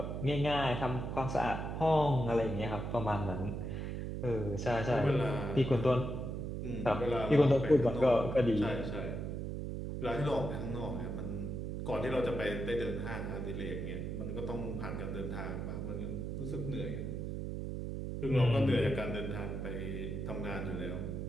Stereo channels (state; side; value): noise; right; hum, 4 dB below the sound